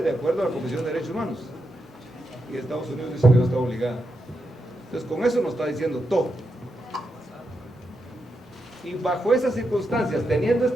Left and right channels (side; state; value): both; normal; correlation 0.85